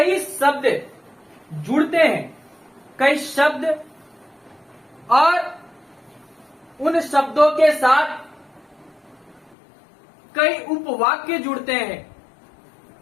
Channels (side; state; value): right; drops out; at 9.6 s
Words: शब्द जुड़ते हैं, कई शब्द और उन शब्दों के साथ कई उपवाक्य जुड़ते हैं